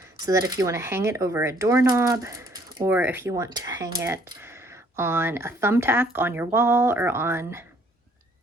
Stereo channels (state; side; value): normal; both; correlation 0.62